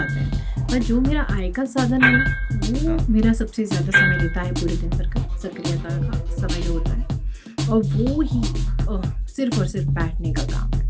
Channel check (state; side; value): identical; both; correlation 1.00